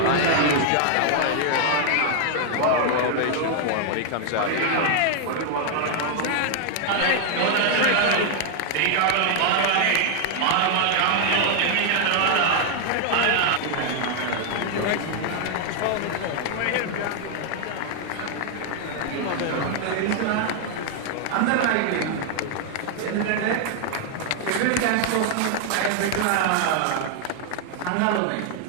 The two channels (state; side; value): different; both; correlation 0.00